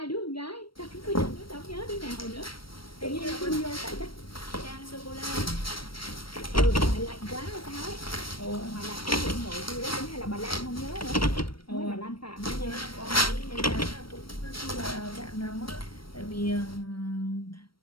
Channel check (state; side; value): late; right; 0.74 ms